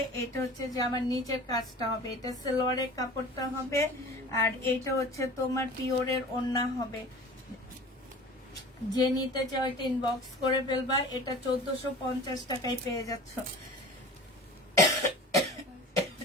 এটা হচ্ছে যে আমার নিচের কাজটা হবে, এটা সালোয়ারের কাপড়টা হবে, আর এটা হচ্ছে তোমার পিওরের ওড়না হবে। যে নিতে চাও এটা ইনবক্স করে ফেলবা। এটা 1450 টাকায় পেয়ে যাচ্ছ।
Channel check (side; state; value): both; normal; correlation 0.40